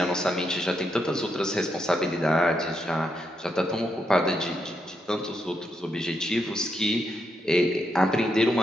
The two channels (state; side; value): normal; both; correlation 0.81